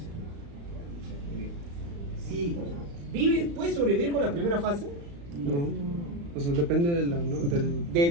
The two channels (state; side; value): late; left; 35 ms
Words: Si ¿puedes sobrevivir con la primera fase? No. O sea, depende de